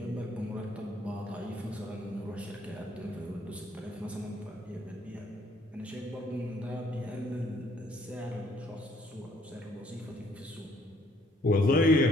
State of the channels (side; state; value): both; normal; correlation 0.65